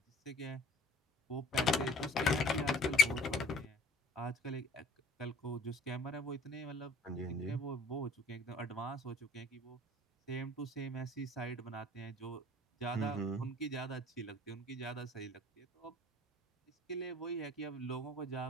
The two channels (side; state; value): both; normal; correlation 0.50